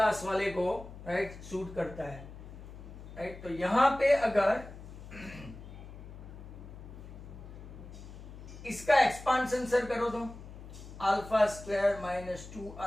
वाले को राइट सूट करता है, राइट। तो यहां पे अगर इसका एक्सपांशन सर करो तो alpha square minus 2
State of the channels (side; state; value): left; noise; hum, 14 dB below the sound